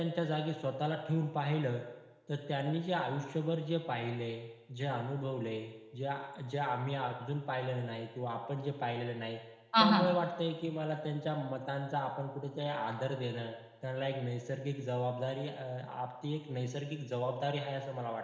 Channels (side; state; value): both; identical; correlation 1.00